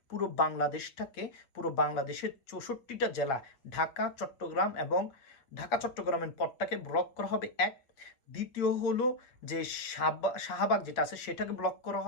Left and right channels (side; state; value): right; late; 7.6 ms